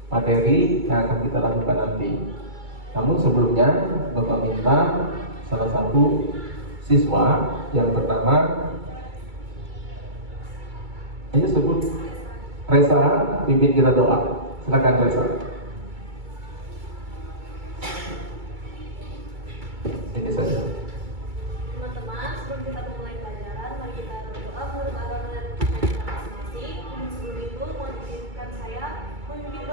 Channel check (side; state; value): left; late; 2.3 ms